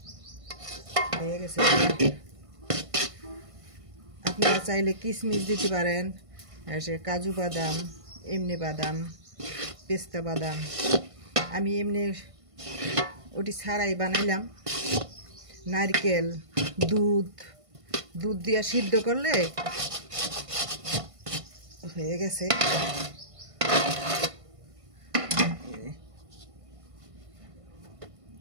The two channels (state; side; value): late; left; 1.5 ms